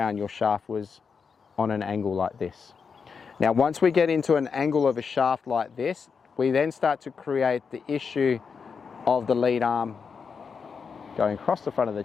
your shaft was on an angle like this. Now, once we get into an angle of a shaft like this, we then start to create the issue of the lead arm going across the front of the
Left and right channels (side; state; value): right; quieter; 5.8 dB